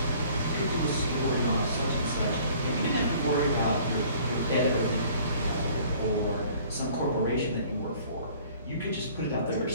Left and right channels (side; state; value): both; inverted; correlation -0.53